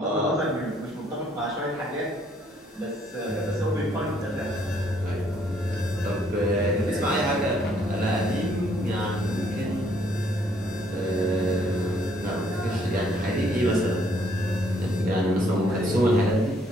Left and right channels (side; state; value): both; normal; correlation 0.66